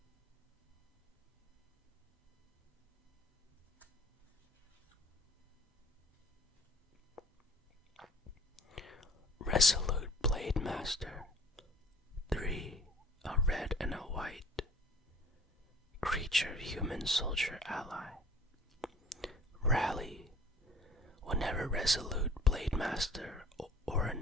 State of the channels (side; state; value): both; normal; correlation 0.51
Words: Resolute Blade Master, 3, a red and a white. Creature human soldier ally. Rally. Whenever Resolute Blade Master or